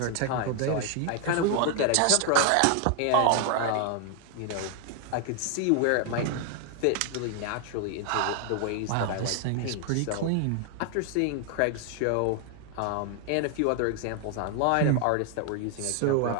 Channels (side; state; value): both; different; correlation 0.00